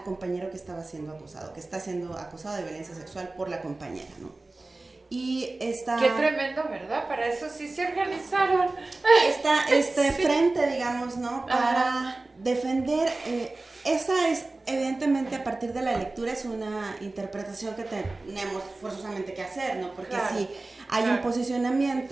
compañero que estaba siendo acusado, que está siendo acusado de violencia sexual por la compañera, ¿no? Y esta... Qué tremendo, ¿verdad? Para eso sí se organizaron. Este frente, digamos, ¿no? Para defender, esa es evidentemente a partir de la lectura es una interpretación que tenemos forzosamente que hacer, ¿no? Porque sí hay un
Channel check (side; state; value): left; quieter; 3.1 dB